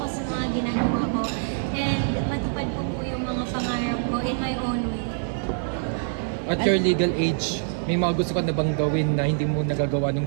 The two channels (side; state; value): left; silent; digital silence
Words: sa mga ginagawa ko and matupad po yung mga pangarap ko in my own way. At your legal age, may mga gusto ka na bang gawin na hindi mo nagagawa